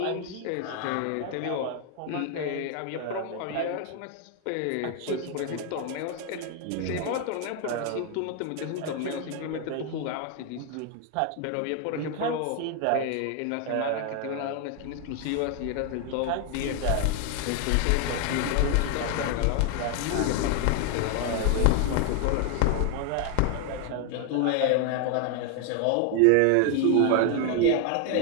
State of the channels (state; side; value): different; both; correlation 0.01